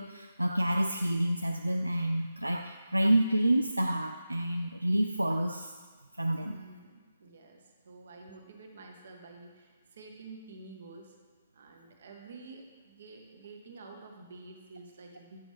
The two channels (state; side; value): inverted; both; correlation -0.94